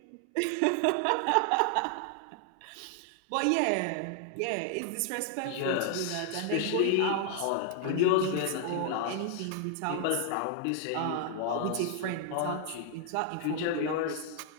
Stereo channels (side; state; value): both; different; correlation 0.00